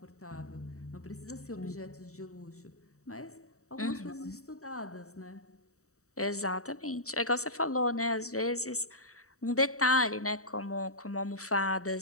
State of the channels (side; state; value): right; late; 0.65 ms